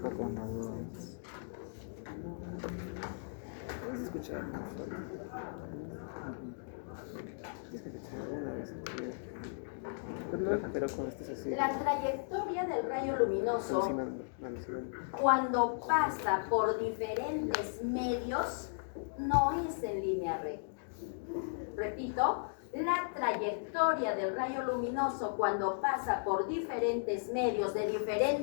¿Puedes escuchar? Pero con esto es así. La trayectoria del rayo luminoso, cuando pasa por diferentes medios, no es en línea recta. Repito, la trayectoria del rayo luminoso cuando pasa por diferentes medios de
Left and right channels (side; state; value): right; silent; digital silence